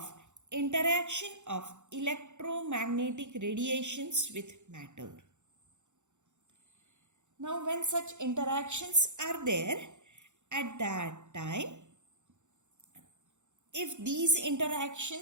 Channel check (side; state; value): left; late; 0.84 ms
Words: interaction of electromagnetic radiations with matter. Now when such interactions are there, at that time, if these